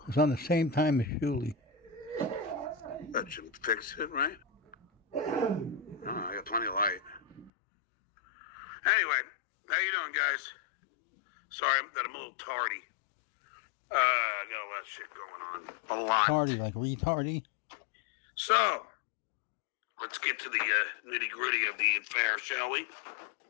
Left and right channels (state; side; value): drops out; right; at 7.5 s